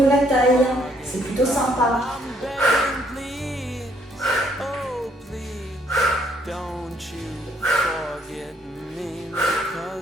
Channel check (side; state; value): both; normal; correlation 0.68